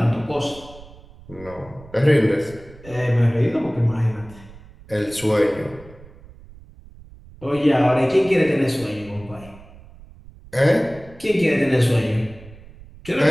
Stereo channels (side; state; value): right; noise; rumble, 21 dB below the sound